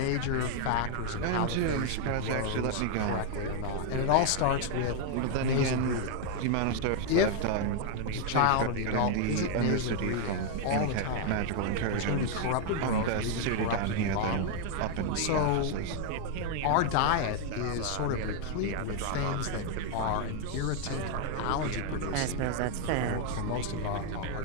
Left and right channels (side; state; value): both; different; correlation 0.00